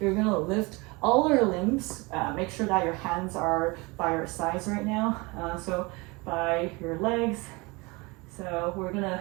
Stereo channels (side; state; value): left; quieter; 25.6 dB